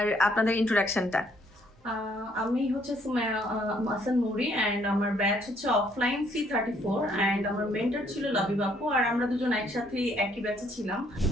আপনাদের ইন্ট্রোডাকশনটা। আমি হচ্ছে সুমাইয়া হাসান নুরি অ্যান্ড আমার ব্যাচ হচ্ছে অফলাইন C34 অ্যান্ড আমার মেন্টর ছিল লাবিব আপু আর আমরা দুজন একসাথে একই ব্যাচে ছিলাম।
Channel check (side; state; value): both; normal; correlation 0.67